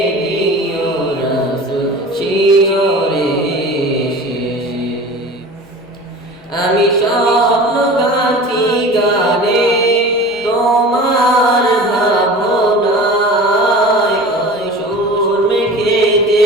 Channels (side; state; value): both; normal; correlation 0.38